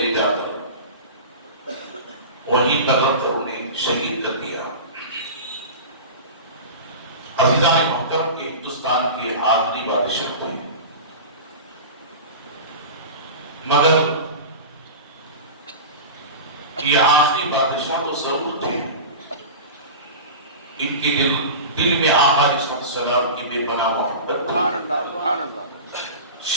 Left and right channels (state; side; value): inverted; both; correlation -0.30